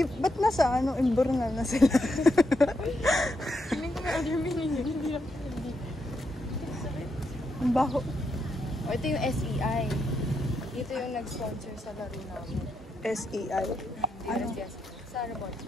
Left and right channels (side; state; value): both; normal; correlation 0.81